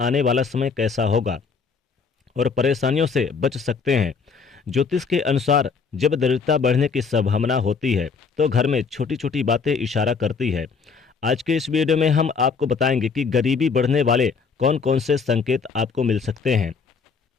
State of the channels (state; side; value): quieter; right; 5.4 dB